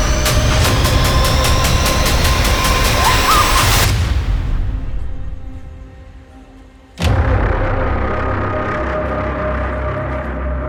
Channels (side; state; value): both; identical; correlation 1.00